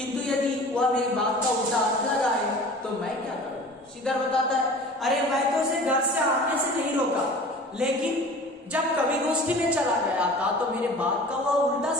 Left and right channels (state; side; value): normal; both; correlation 0.41